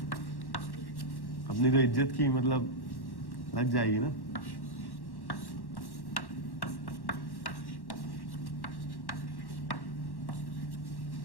अपनी तो इज्जत की मतलब लग जाएगी ना।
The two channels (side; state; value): right; late; 1.1 ms